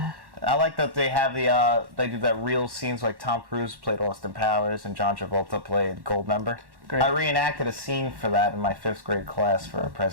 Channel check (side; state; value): left; late; 1.1 ms